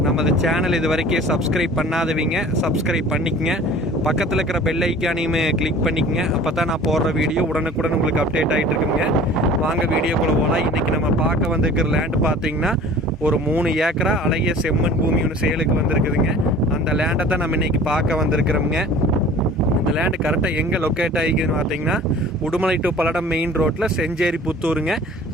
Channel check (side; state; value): both; normal; correlation 0.45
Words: நமது சேனல் இது வரைக்கும் சப்ஸ்கிரைப் பண்ணாதவங்க சப்ஸ்கிரைப் பண்ணிக்கங்க. பக்கத்தில் இருக்கிற பெல் ஐக்கானையுமே கிளிக் பண்ணிக்கங்க. அப்போ தான் நான் போடுற வீடியோ உடனுக்குடன் உங்களுக்கு அப்டேட் ஆகிட்டு இருக்குங்க. வாங்க வீடியோக்குள்ளே போகலாம். இன்றைக்கி நம்ம பார்க்க வந்திருக்கிற லேண்டு பார்த்தீங்கன்னா ஒரு 3 ஏக்கரா அழகிய செம்மண் பூமி ஒன்று சேலுக்கு வந்திருக்குதுங்க. அந்த லேண்டை தான் நம்ம இன்றைக்கி பார்க்க வந்திருக்கிறோம்ங்க. இந்த லேண்டு கரெக்டாக எங்கே லொக்கேட் ஆகிக்குதுன்னு பார்த்தீங்கன்னா உடுமலை டு பல்லடம் மெயின் ரோட்டில் செஞ்சேரி புத்தூருங்க.